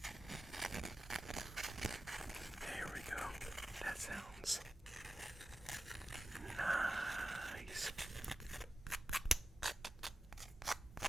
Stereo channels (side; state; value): both; normal; correlation 0.93